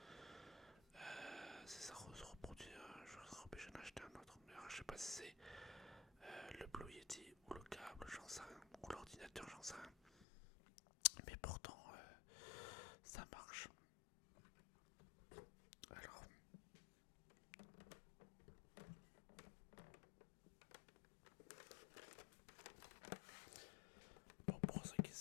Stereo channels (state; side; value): drops out; right; at 10.2 s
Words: Si ça se reproduit, je serais obligé d'en acheter un autre. Mais alors, je sais pas si c'est le Blue Yeti ou le câble, j'en sais rien. Ou l'ordinateur, j'en sais rien. Mais pourtant, ça marche. Alors, bon, pour ceux qui